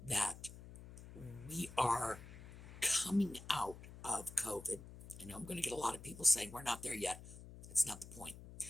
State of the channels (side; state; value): left; noise; hum, 15 dB below the sound